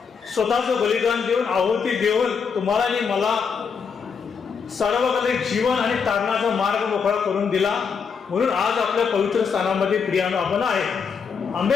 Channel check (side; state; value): right; quieter; 6.0 dB